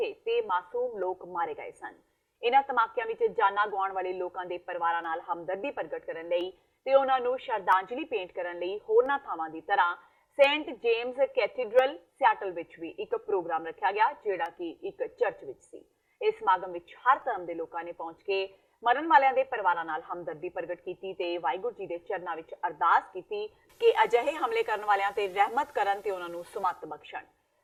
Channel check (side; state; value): both; identical; correlation 1.00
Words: ਤੇ ਮਾਸੂਮ ਲੋਕ ਮਾਰੇ ਗਏ ਸਨ। ਇਹਨਾਂ ਧਮਾਕਿਆਂ ਵਿੱਚ ਜਾਨਾਂ ਗਵਾਉਣ ਵਾਲੇ ਲੋਕਾਂ ਦੇ ਪਰਿਵਾਰਾਂ ਨਾਲ ਹਮਦਰਦੀ ਪ੍ਰਗਟ ਕਰਨ ਲਈ ਤੇ ਉਹਨਾਂ ਨੂੰ ਸ਼ਰਧਾਂਜਲੀ ਭੇਂਟ ਕਰਨ ਲਈ ਹੋਰਨਾਂ ਥਾਵਾਂ ਦੀ ਤਰ੍ਹਾਂ ਸੇਂਟ ਜੇਮਸ ਕੈਥੀਡਰਲ ਸਿਆਟਲ ਵਿੱਚ ਵੀ ਇੱਕ ਪ੍ਰੋਗਰਾਮ ਰੱਖਿਆ ਗਿਆ, ਜਿਹੜਾ ਕਿ ਇੱਕ ਚਰਚ ਵਿੱਚ ਸੀ। ਇਸ ਸਮਾਗਮ ਵਿੱਚ ਹਰ ਧਰਮ ਦੇ ਲੋਕਾਂ ਨੇ ਪਹੁੰਚ ਕੇ ਮਰਨ ਵਾਲਿਆਂ ਦੇ ਪਰਿਵਾਰਾਂ ਨਾਲ ਹਮਦਰਦੀ ਪ੍ਰਗਟ ਕੀਤੀ ਤੇ ਵਾਹਿਗੁਰੂ ਜੀ ਦੇ ਚਰਨਾਂ ਵਿੱਚ ਅਰਦਾਸ ਕੀਤੀ ਕਿ ਅਜਿਹੇ ਹਮਲੇ ਕਰਨ ਵਾਲਿਆਂ ਤੇ ਰਹਿਮਤ ਕਰਨ ਤੇ ਉਹਨਾਂ ਨੂੰ ਸੁਮੱਤ ਬਖਸ਼ਣ।